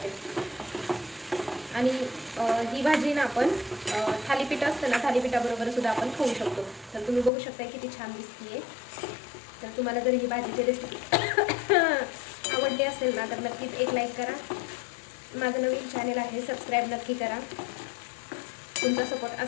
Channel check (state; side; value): drops out; right; at 7.3 s